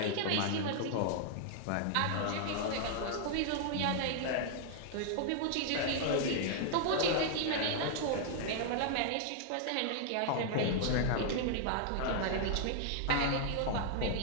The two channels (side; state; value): both; different; correlation -0.01